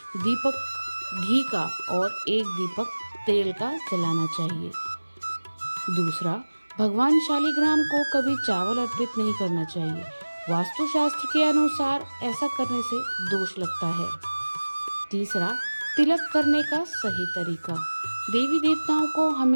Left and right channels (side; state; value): both; inverted; correlation -1.00